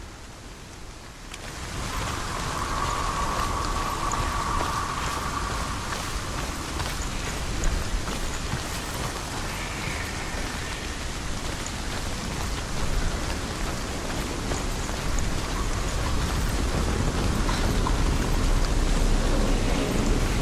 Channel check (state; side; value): identical; both; correlation 1.00